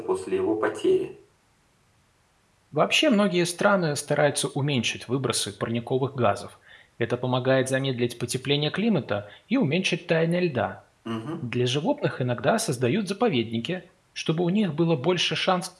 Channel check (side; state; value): both; identical; correlation 1.00